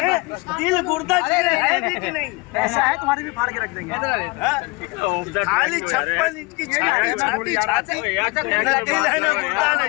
दिल गुर्दा है भी कि नहीं? ऐसा है, तुम्हारी भी फाड़ के रख देंगे। खाली 56 इंच की छाती, न दिल है, न गुर्दा,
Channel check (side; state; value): right; quieter; 25.9 dB